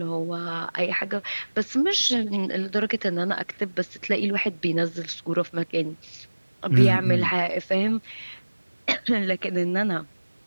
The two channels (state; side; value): inverted; both; correlation -1.00